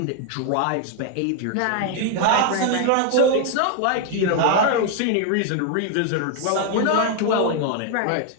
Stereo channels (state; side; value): different; both; correlation 0.00